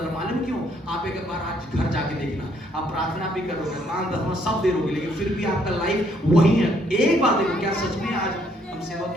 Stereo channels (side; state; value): both; normal; correlation 0.68